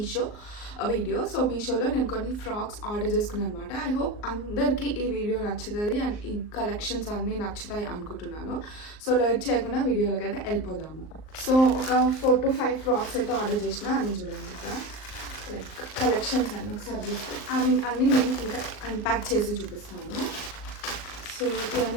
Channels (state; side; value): late; right; 38 ms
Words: వీడియో. సో మీషోలో నేను కొన్ని ఫ్రాక్స్ ఆర్డర్ చేసుకున్నాను అనమాట. ఐ హోప్ అందరికీ ఈ వీడియో నచ్చుతుంది అండ్ ఈ కలెక్షన్స్ అన్నీ నచ్చుతాయి అనుకుంటున్నాను. సో లేట్ చేయకుండా వీడియోలోకి అయితే వెళ్ళిపోదాము. సో ఒక 4 to 5 ఫ్రాక్స్ అయితే ఆర్డర్ చేసిన. అన్నీ చూడండి ఇక్కడ లైక్ కలెక్షన్స్ అన్నీ ఒకసారి చూస్తాను. అన్నీ నేను ఇంకా అన్ప్యాక్ చేసి చూపిస్తాను. సో